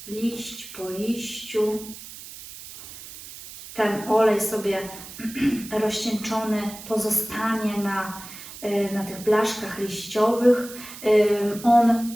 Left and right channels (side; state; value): right; noise; hiss, 14 dB below the sound